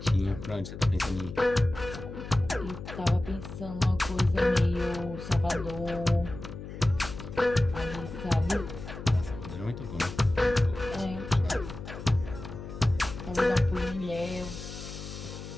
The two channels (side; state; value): left; noise; hum, 11 dB below the sound